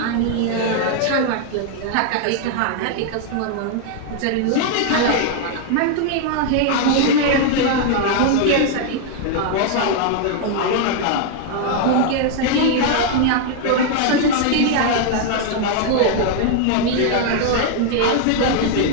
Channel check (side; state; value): both; different; correlation 0.00